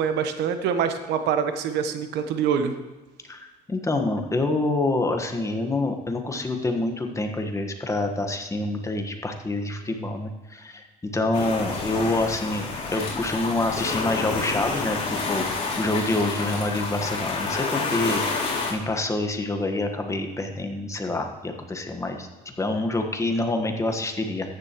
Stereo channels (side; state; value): both; normal; correlation 0.49